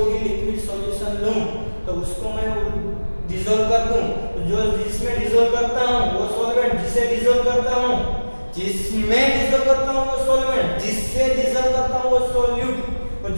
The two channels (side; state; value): both; inverted; correlation -1.00